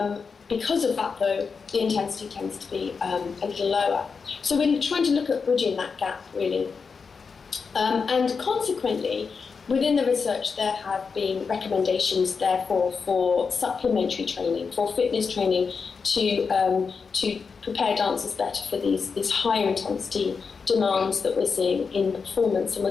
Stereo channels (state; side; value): quieter; right; 5.3 dB